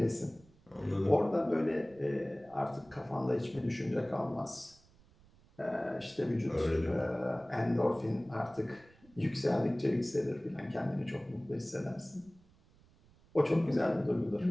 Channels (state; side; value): noise; right; rumble, 28 dB below the sound